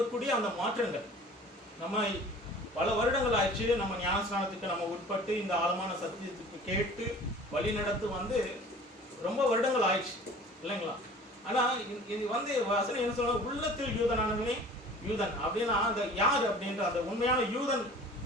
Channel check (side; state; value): both; normal; correlation 0.46